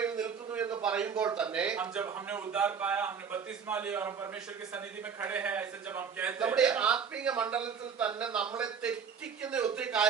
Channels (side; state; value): left; quieter; 6.6 dB